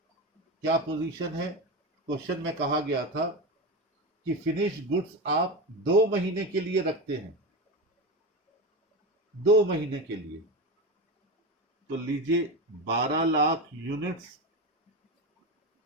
क्या पोजीशन है, क्वेश्चन में कहा गया था कि फिनिश गुड्स आप 2 महीने के लिए रखते हैं, 2 महीने के लिए, तो लीजिए 12 लाख यूनिट्स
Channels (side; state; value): both; normal; correlation 0.20